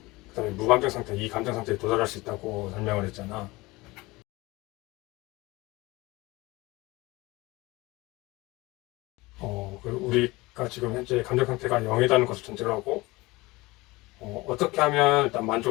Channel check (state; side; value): quieter; right; 21.8 dB